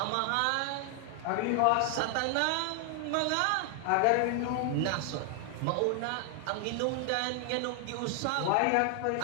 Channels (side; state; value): both; different; correlation 0.00